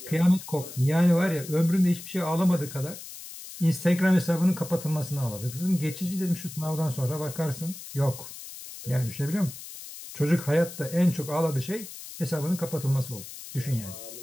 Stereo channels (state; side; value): noise; left; hiss, 13 dB below the sound